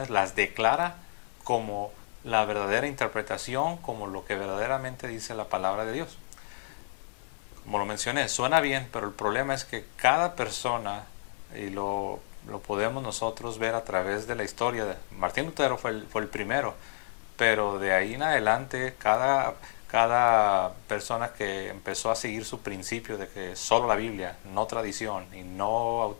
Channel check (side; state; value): right; silent; 57 dB below the other